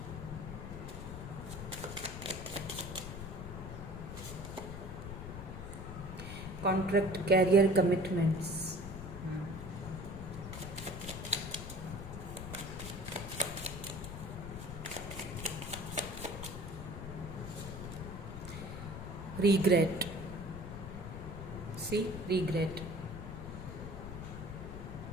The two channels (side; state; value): left; noise; rumble, 8 dB below the sound